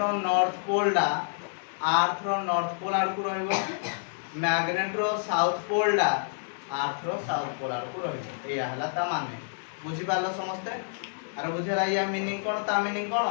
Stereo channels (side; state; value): right; silent; 59 dB below the other